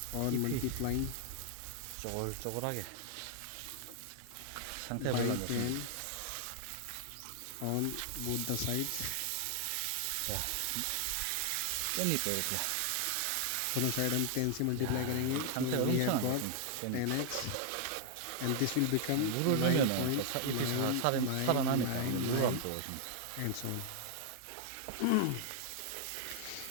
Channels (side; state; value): both; different; correlation 0.00